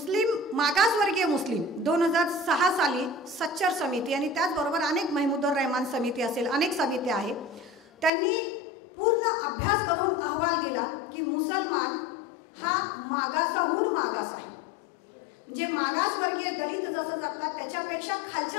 मागासवर्गीय मुस्लिम 2006 साली सच्चर समिती आणि त्याचबरोबर अनेक महमूदुर रहमान समिती असेल, अनेक समित्या आहेत, त्यांनी पूर्ण अभ्यास करून अहवाल दिला की मुसलमान हा मागासाहून मागास आहे। म्हणजे मागासवर्गीय दलित जसं जगतात त्याच्यापेक्षा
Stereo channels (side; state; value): right; drops out; at 8.1 s